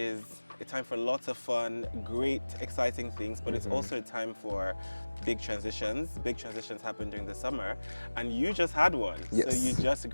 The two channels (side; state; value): both; inverted; correlation -1.00